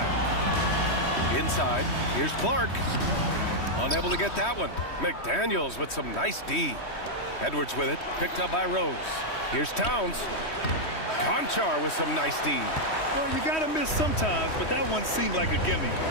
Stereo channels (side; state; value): right; late; 3.1 ms